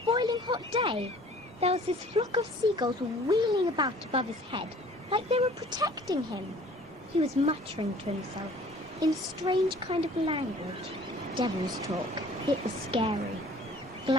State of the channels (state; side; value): normal; both; correlation 0.51